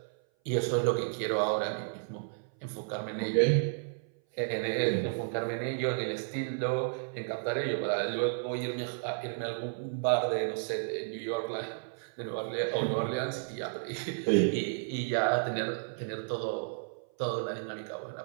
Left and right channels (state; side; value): silent; left; 56 dB below the other